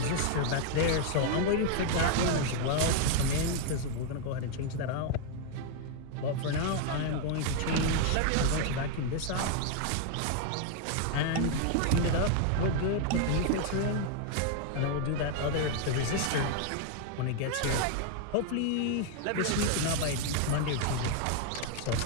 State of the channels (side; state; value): both; different; correlation 0.00